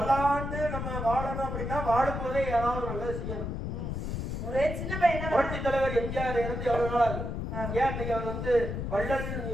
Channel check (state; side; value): noise; left; rumble, 4 dB below the sound